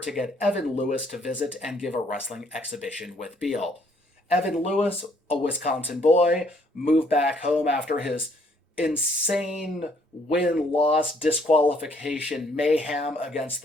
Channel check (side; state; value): both; normal; correlation 0.66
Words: to get Evan Lewis to visit and give a wrestling exhibition with Beale. Evan Lewis, a Wisconsin boy, moved back home after his insane win-loss disqualification mayhem against